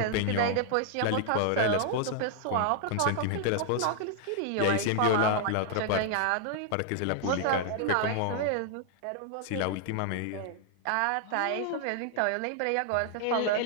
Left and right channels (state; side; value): different; both; correlation 0.00